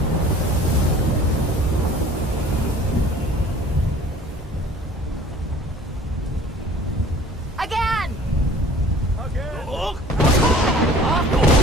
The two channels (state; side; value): normal; both; correlation 0.48